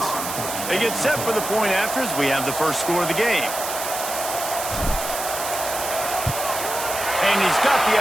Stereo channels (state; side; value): noise; right; hiss, 6 dB below the sound